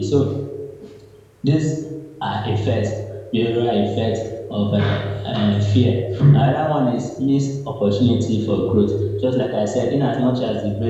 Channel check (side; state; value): both; identical; correlation 1.00